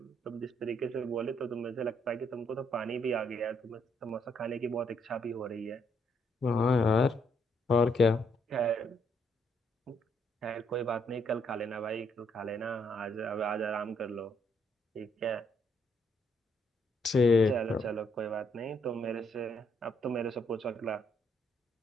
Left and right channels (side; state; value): both; normal; correlation 0.72